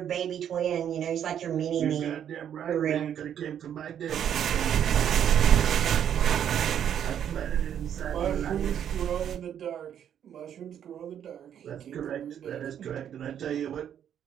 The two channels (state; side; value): quieter; left; 9.4 dB